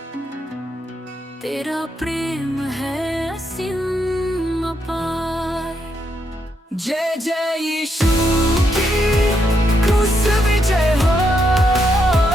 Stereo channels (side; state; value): both; normal; correlation 0.79